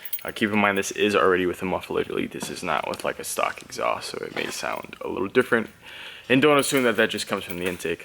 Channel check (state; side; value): identical; both; correlation 1.00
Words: Keep in mind this is already with a muffler delete. This is not with like a stock exhaust, so it may sound a little different. And don't assume that that just comes from the